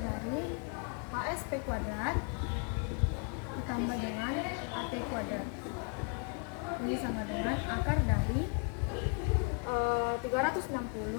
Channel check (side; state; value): right; quieter; 38.9 dB